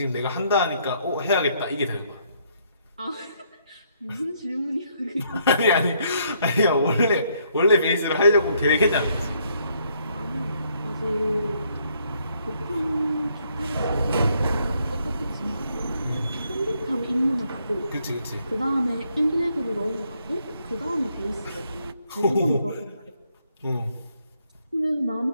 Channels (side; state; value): both; inverted; correlation -0.71